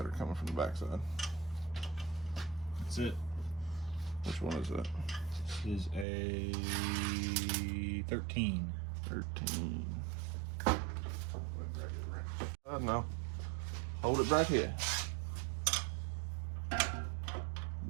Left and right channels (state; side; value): drops out; left; at 6.1 s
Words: coming from the backside. That's it. Which one is that? This is a 13. 13. No. Hold it right here.